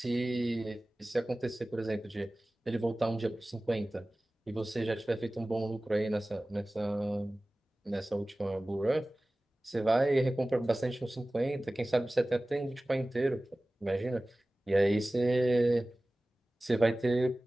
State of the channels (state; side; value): normal; both; correlation 0.97